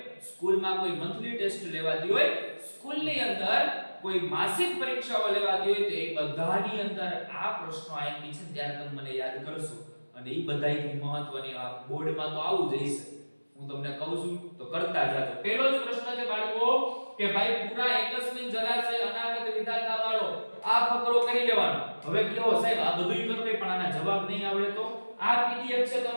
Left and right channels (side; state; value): both; inverted; correlation -1.00